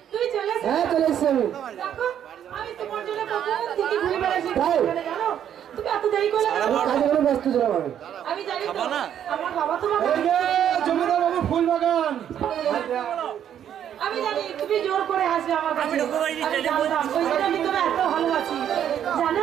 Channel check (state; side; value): quieter; left; 9.7 dB